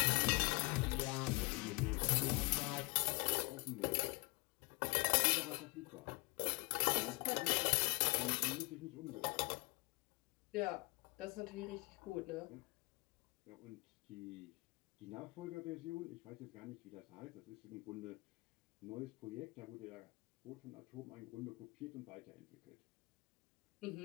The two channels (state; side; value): quieter; right; 27.1 dB